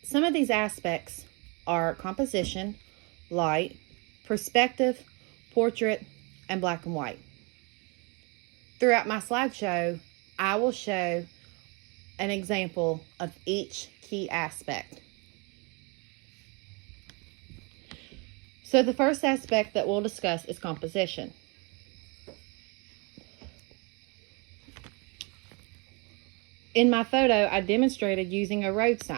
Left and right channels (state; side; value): quieter; left; 30.8 dB